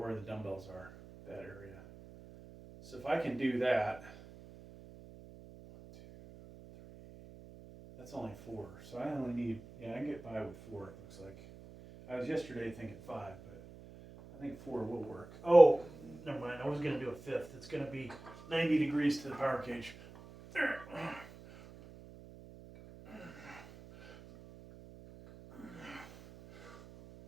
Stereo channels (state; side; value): noise; right; hum, 18 dB below the sound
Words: the dumbbells are, that area. So if I can do that, 1, 2, 3, that's only 4. So I only need, I can get by with 4, it looks like. I was yesterday thinking 5, but I think 4 will work. Oh, never mind. I was going to do a 5th. It's going to be 90 degrees to the power cage. There.